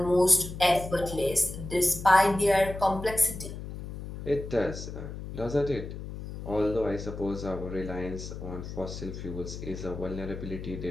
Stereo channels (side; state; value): left; noise; hum, 9 dB below the sound